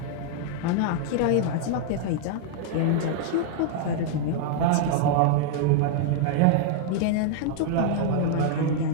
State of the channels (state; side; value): different; both; correlation 0.00